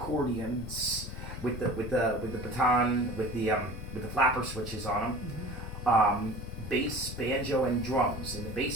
with the baton with the flapper switches on them, bass, banjo, and drums, and the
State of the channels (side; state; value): both; normal; correlation 0.40